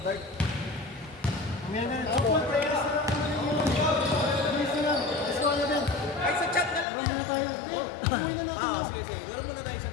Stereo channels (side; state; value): right; drops out; at 6.9 s